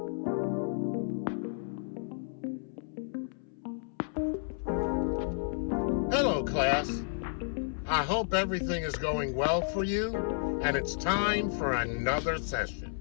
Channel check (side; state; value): right; silent; 57 dB below the other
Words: Hello, class. I hope everything is going well for you, and it's time for another